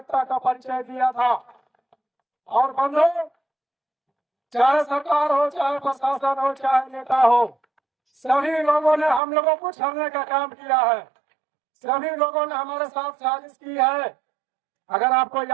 का परिचय दिया था। और बंधु, चाहे सरकार हो, चाहे प्रशासन हो, चाहे नेता हो, सभी लोगों ने हम लोगों को छलने का काम किया है। सभी लोगों ने हमारे साथ साजिश की है। अगर आपको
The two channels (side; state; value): left; drops out; at 9.2 s